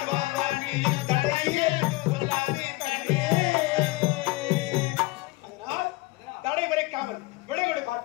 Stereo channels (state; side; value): quieter; right; 21.9 dB